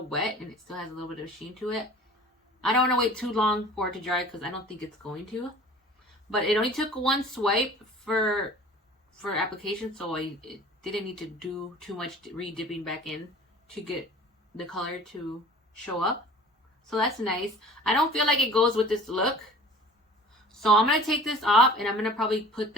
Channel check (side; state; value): both; normal; correlation 0.45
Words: wet and it still has a little bit of sheen to it. I don't want to wait too long for it to dry because I don't think it's going to. But it only took one swipe for application, so it didn't need to do too much re-dipping back in to get the color to show up. So that's nice. I don't feel like it goes with this look. So I'm going to take this off and I'm going to probably put